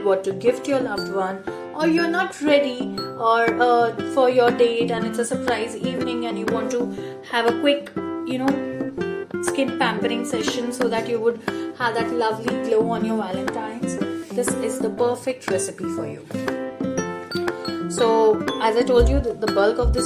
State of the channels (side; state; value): both; identical; correlation 1.00